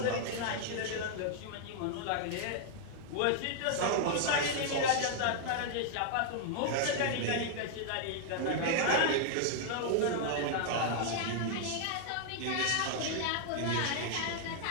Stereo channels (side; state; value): both; different; correlation 0.00